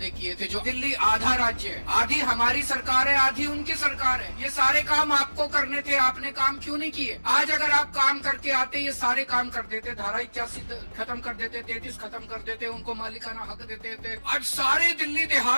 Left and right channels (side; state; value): both; inverted; correlation -1.00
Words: किए थे, जो दिल्ली आधा राज्य है, आधी हमारी सरकार है, आधी उनकी सरकार है, ये सारे काम आपको करने थे, आपने काम क्यों नहीं किए? आज अगर आप काम करके आते, ये सारे काम कर देते, धारा 81 खत्म कर देते, 33 खत्म कर देते, उनको मालिकाना हक देते थे। आज सारे दिल्ली